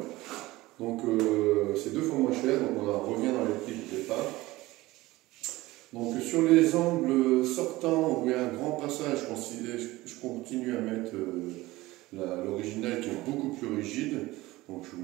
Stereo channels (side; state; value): left; quieter; 19.0 dB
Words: Donc c'est 2 fois moins cher, donc on revient dans les prix du départ. Donc sur les angles sortants où il y a un grand passage, je continue à mettre l'original qui est beaucoup plus rigide. Donc je vous